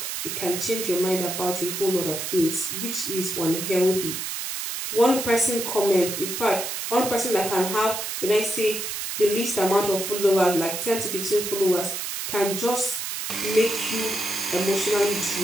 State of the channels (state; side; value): noise; right; hiss, 4 dB below the sound